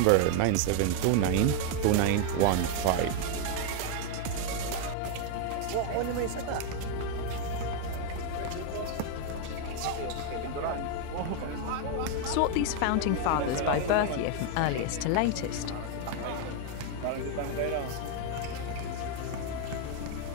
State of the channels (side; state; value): both; different; correlation 0.00